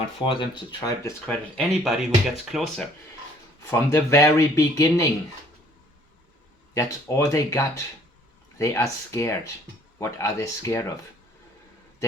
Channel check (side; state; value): both; normal; correlation 0.59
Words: for them to try to discredit anybody who gets closer. From the very beginning. That's all they got. They are scared. What are they scared of?